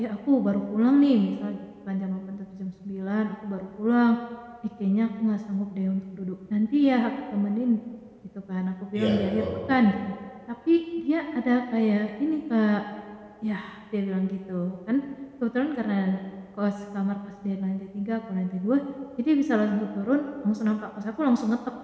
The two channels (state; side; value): identical; both; correlation 1.00